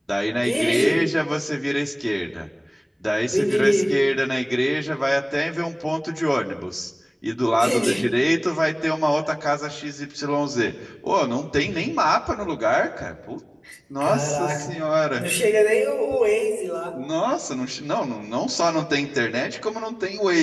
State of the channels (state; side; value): identical; both; correlation 1.00